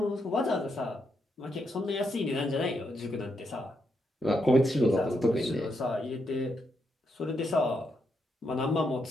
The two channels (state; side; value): normal; both; correlation 0.81